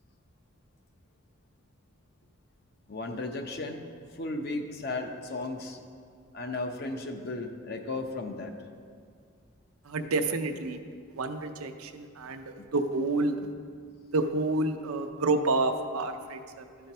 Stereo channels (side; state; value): both; normal; correlation 0.01